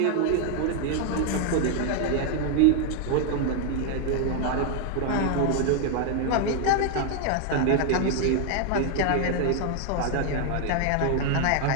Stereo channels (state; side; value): different; both; correlation 0.00